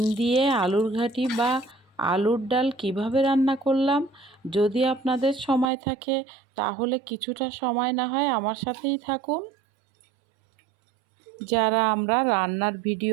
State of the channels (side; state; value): left; drops out; at 5.7 s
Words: দিয়ে আলুর ঘাঁটি বা আলুর ডাল কিভাবে রান্না করলাম, যদি আপনাদের সময় থাকে তাহলে কিছুটা সময় না হয় আমার সাথেই থাকুন। যারা আমরা রান্নার